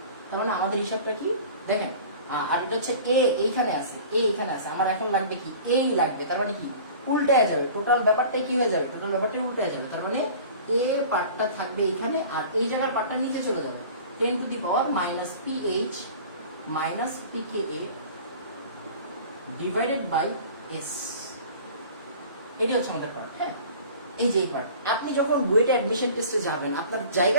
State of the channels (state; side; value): inverted; both; correlation -0.42